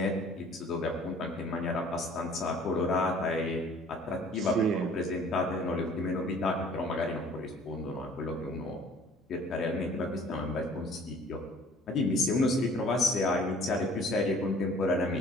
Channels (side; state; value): both; normal; correlation 0.52